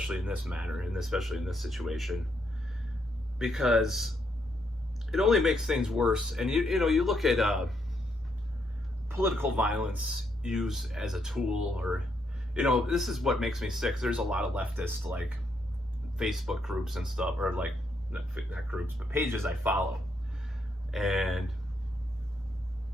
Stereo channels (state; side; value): normal; both; correlation 0.77